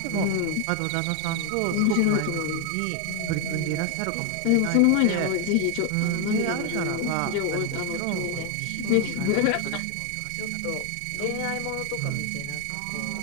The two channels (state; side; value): different; both; correlation 0.01